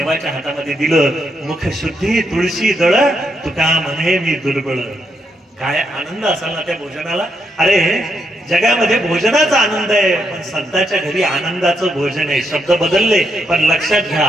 हातामध्ये दिलं. मुख शुद्धी तुळशी दळ, तुका म्हणे मी दुर्बळ. काय आनंद असाल ना त्या भोजनाला. अरे जगामध्ये भोजनाचा आनंद आहे पण संतांच्या घरी आनंदाचं भोजन आहे. शब्द बदलले पण लक्षात घ्या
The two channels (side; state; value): both; normal; correlation 0.80